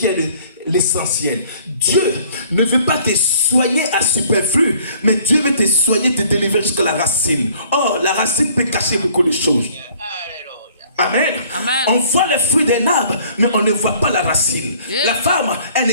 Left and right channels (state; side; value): inverted; both; correlation -0.57